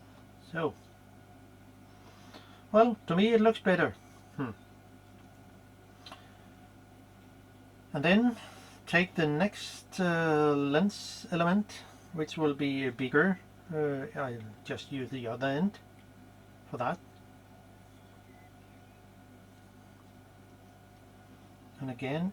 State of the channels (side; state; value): both; identical; correlation 1.00